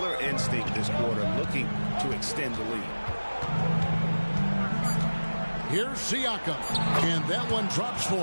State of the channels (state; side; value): inverted; both; correlation -1.00